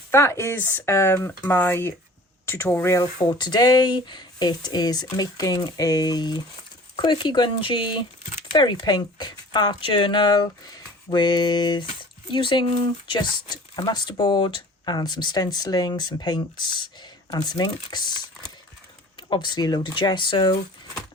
that is my tutorial for today. It is making a quirky grungy, very pink art journal with using just a masterboard and some stenciling, some paints and some inks, obviously a load of gesso,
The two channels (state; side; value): normal; both; correlation 0.46